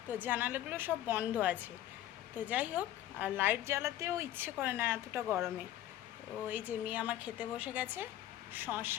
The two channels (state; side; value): quieter; right; 13.0 dB